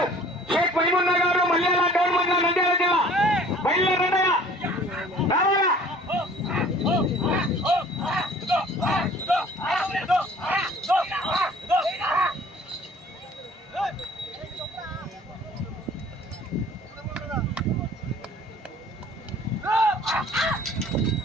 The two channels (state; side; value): normal; both; correlation 0.50